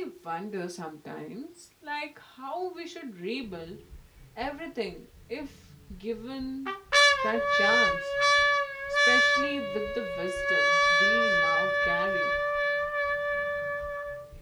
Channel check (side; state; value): both; identical; correlation 1.00